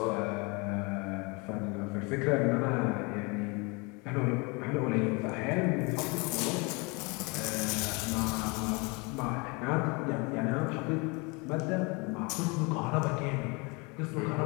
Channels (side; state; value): right; quieter; 29.0 dB